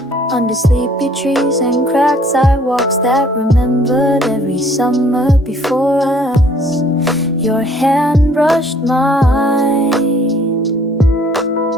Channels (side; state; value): both; normal; correlation 0.59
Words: under sleepy trees and cracked sidewalks that remembered every summer before us. Your hand brushed mine,